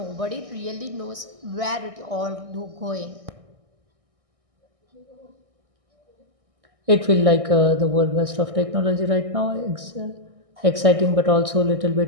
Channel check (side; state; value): left; late; 1.6 ms